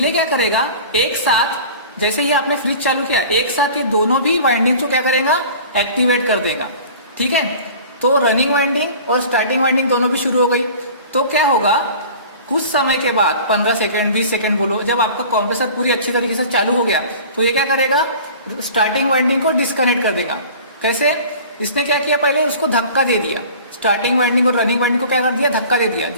क्या करेगा, एक साथ जैसे ही आपने फ्रिज चालू किया, एक साथ ये दोनों भी वाइंडिंग को क्या करेगा, एक्टिवेट कर देगा, ठीक है। तो रनिंग वाइंडिंग और स्टार्टिंग वाइंडिंग दोनों भी शुरू हो गई। तो क्या होगा, कुछ समय के बाद 15 सेकेंड 20 सेकेंड बोलो, जब आपका कंप्रेसर पूरी अच्छी तरीके से चालू हो गया, तो ये क्या करेगा, स्टार्टिंग वाइंडिंग को डिस्कनेक्ट कर देगा। कैसे, इसने क्या किया, पहले उसको धक्का दे दिया, स्टार्टिंग वाइंडिंग और रनिंग वाइंडिंग को क्या कर दिया, धक्का दे दिया,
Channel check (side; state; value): both; inverted; correlation -0.43